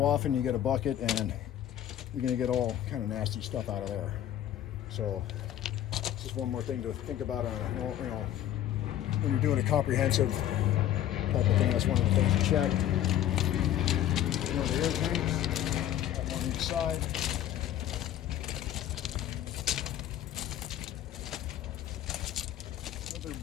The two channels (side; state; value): right; quieter; 11.9 dB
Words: often you get a bucket, and you're going to get all kind of nasty stuff out of there. So this is one more thing to think about on when you're doing a comprehensive type of thing. That's one of the things to check. The air tanks on each side. Other